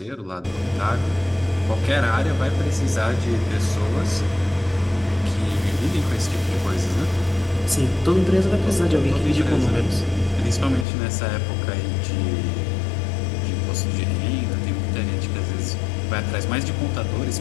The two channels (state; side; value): drops out; right; at 10.9 s